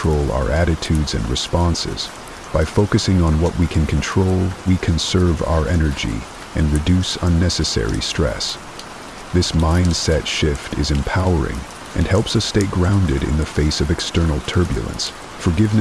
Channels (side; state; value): both; identical; correlation 1.00